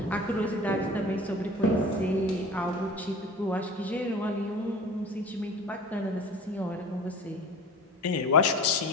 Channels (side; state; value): both; normal; correlation 0.38